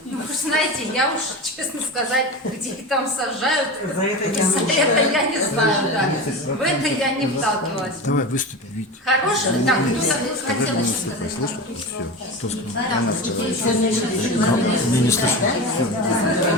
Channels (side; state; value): both; normal; correlation 0.26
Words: Ну, вы знаете, я уж, честно сказать, где их там сажают, За это я за это я не знаю, да. В это я не вталкивалась. Давай выступи, Вить. Хорошо, так, кто хотел еще сказать? Слышно? Все. Кто сказал? Она сказала. Не слышно.